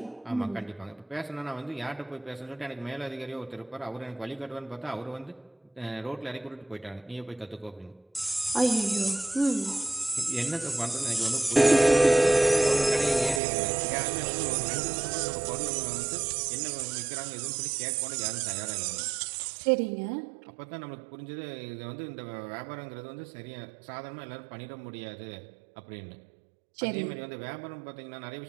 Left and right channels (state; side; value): drops out; left; at 13.4 s